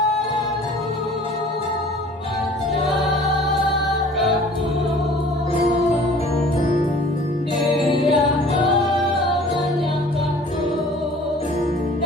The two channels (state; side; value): normal; both; correlation 0.49